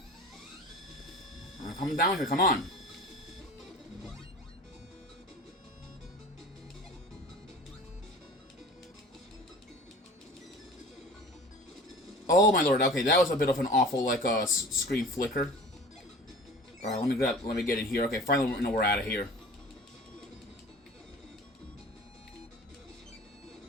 Come down here, come on. Oh my lord, okay, that was a bit of an awful, like, screen flicker. Alright, let me get in here. Okay, finally we're out of here.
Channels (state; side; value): normal; both; correlation 0.41